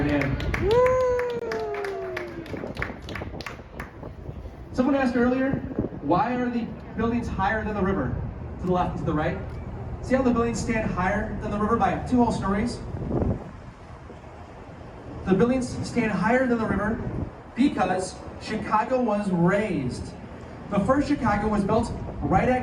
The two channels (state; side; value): identical; both; correlation 1.00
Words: name. Someone asked earlier, why are the buildings higher than the river? To the left and to the right. See how the buildings stand higher than the river by 2 whole stories? The buildings stand higher than the river because Chicago was raised. The first Chicago was built right